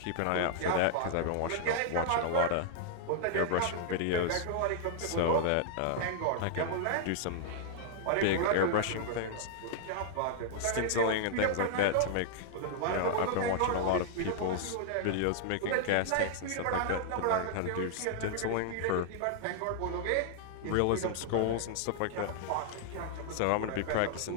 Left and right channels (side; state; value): both; different; correlation -0.01